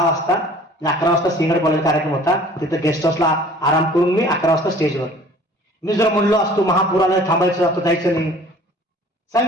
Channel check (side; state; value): both; normal; correlation 0.50